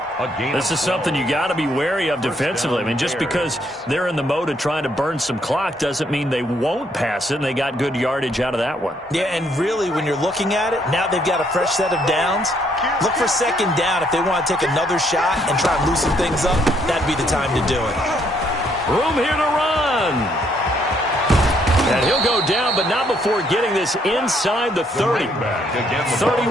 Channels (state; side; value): normal; both; correlation 0.70